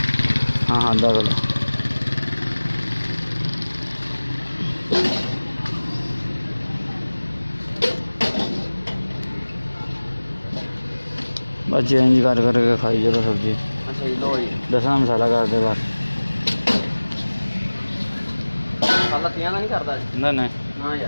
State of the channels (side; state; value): both; inverted; correlation -1.00